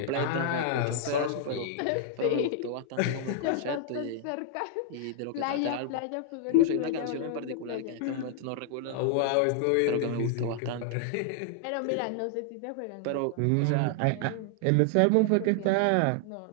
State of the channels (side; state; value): both; different; correlation -0.01